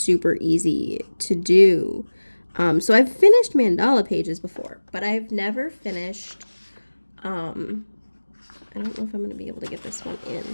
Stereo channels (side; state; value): both; inverted; correlation -1.00